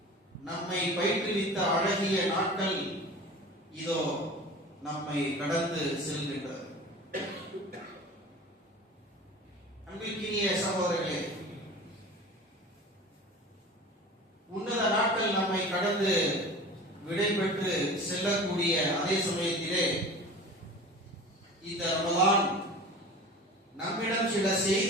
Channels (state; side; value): normal; both; correlation 0.37